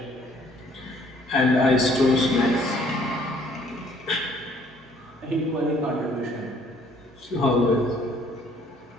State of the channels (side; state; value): both; normal; correlation 0.61